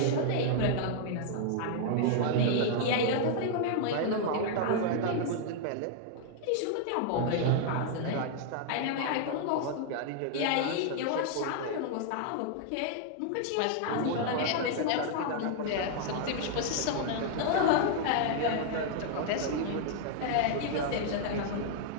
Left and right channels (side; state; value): both; different; correlation -0.01